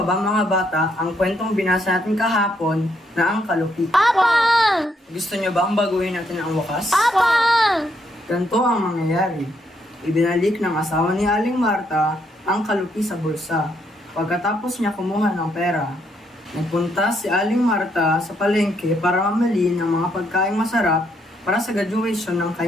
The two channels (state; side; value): normal; both; correlation 0.74